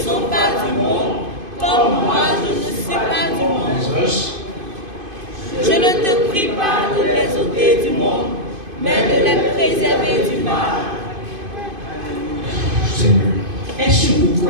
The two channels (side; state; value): left; late; 2.5 ms